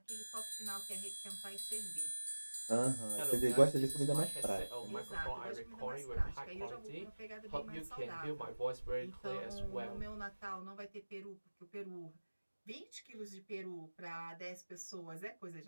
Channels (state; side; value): inverted; both; correlation -1.00